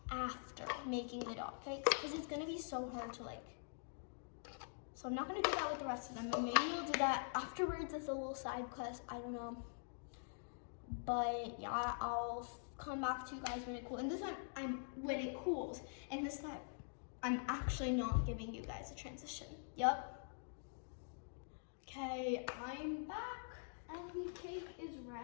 after making the dot cakes because it's gonna be so hard to like. So I'm not gonna do that with the rest of them, but maybe we'll do that afterwards as a little side quest. I don't know. But yeah, I'll come back to you guys when it cools. And this time, when it cools. And this time, I'm actually not giving you guys a transition. Yup. Okay, I'm back. And the cake is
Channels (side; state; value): right; silent; digital silence